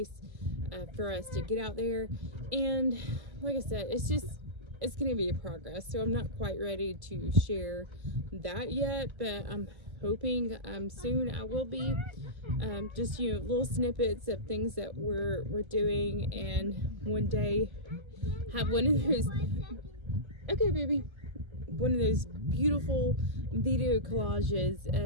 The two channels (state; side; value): late; left; 1.3 ms